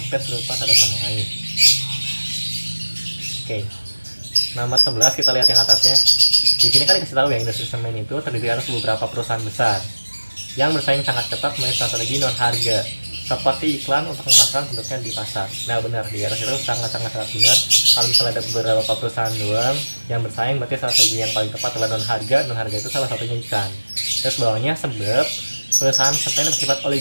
serupa satu sama lain. Oke. Nomor 11 kita lihat yang atasnya. Di sini kan dikasih tahu ya, industri semen itu terdiri atas beberapa perusahaan besar yang bersaing sangat ketat melalui strategi non harga, seperti iklan untuk memasarkan produknya di pasar. Nah benar, di atas itu sangat-sangat benar. Kalau misalnya ada beberapa perusahaan doang yang bersaing, berarti strategi yang paling tepat adalah non harga. Non harga itu salah satunya iklan. Terus bawahnya sebab perusahaan semen bersifat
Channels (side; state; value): both; inverted; correlation -1.00